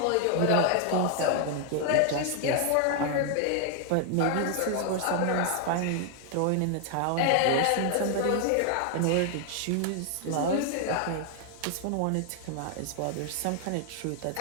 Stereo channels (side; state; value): both; different; correlation 0.00